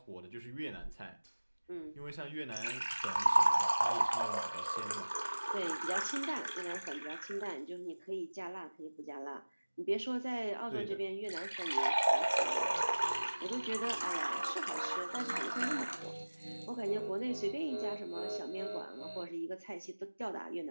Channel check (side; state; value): both; inverted; correlation -1.00